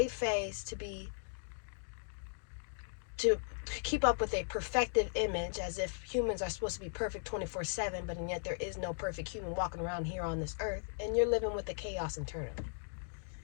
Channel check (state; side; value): silent; right; digital silence